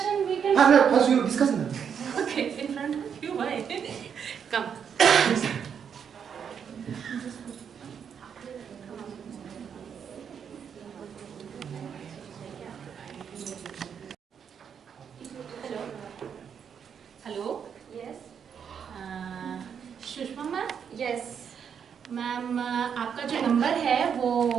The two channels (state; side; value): quieter; left; 7.5 dB